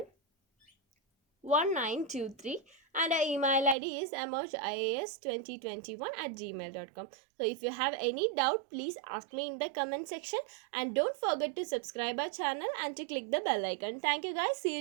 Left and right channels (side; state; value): left; drops out; at 3.8 s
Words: 1923, and our email ID is emojIAS2021@gmail.com. So if you have any doubt, please ask me in the comment section, and don't forget to subscribe our channel and to click the bell icon. Thank you guys. See